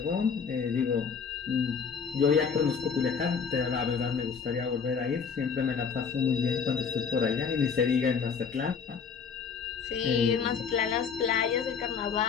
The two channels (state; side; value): quieter; right; 6.1 dB